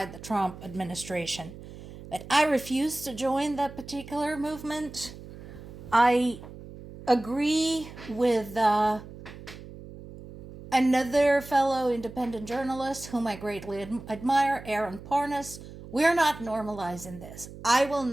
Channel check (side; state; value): right; noise; hum, 15 dB below the sound